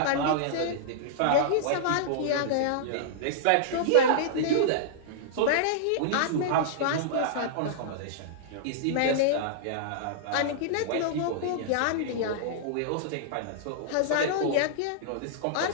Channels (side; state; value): both; different; correlation -0.02